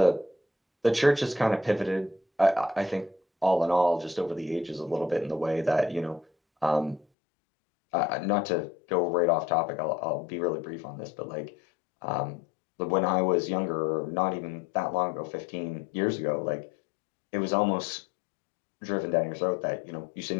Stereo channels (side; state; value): right; drops out; at 7.1 s